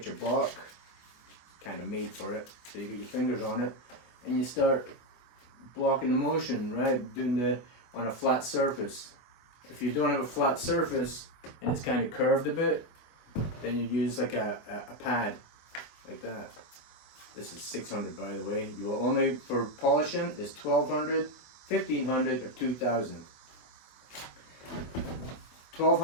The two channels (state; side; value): late; right; 24 ms